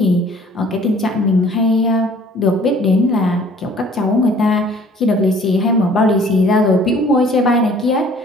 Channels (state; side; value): normal; both; correlation 0.54